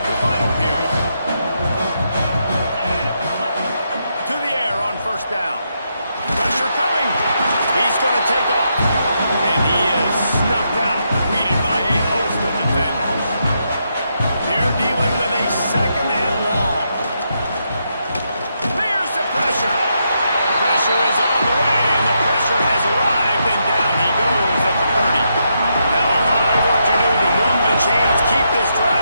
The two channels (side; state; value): both; inverted; correlation -0.81